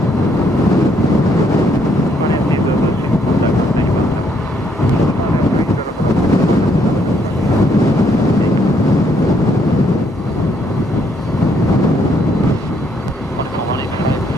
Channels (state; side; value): normal; both; correlation 0.71